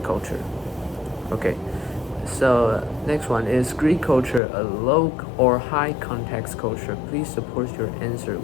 culture. Okay. So next one is Greek culture a low or high context culture? Please support your answer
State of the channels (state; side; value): drops out; right; at 4.4 s